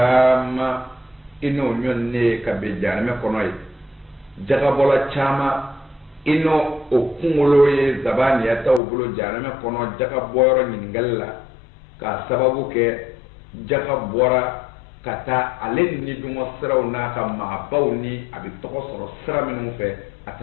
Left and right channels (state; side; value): drops out; right; at 8.8 s